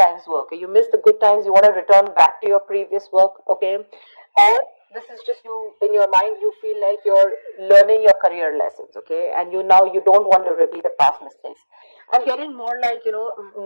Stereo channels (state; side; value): inverted; both; correlation -1.00